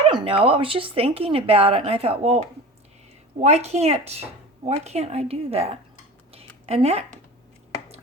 don't know. I was just thinking about it, and I thought, well, why can't I do that? And that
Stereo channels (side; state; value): both; normal; correlation 0.34